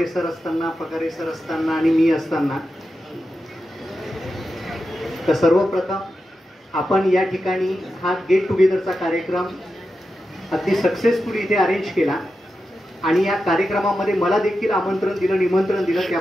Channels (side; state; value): both; normal; correlation 0.90